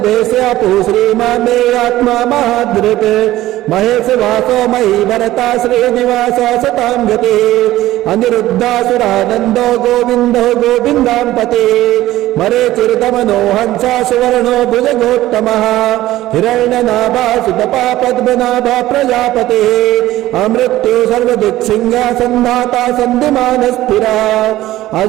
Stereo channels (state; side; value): quieter; left; 15.5 dB